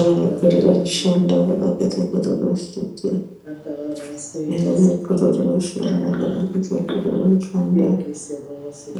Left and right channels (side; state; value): both; identical; correlation 1.00